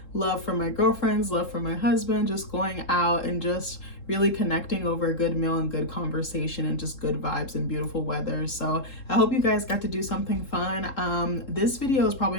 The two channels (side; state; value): right; late; 3.7 ms